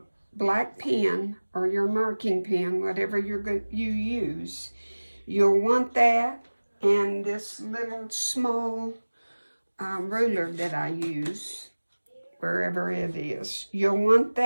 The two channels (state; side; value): inverted; both; correlation -1.00